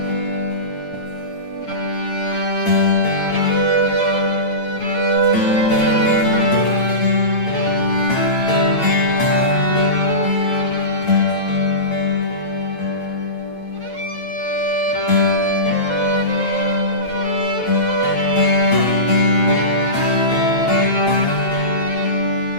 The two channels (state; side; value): late; right; 8.9 ms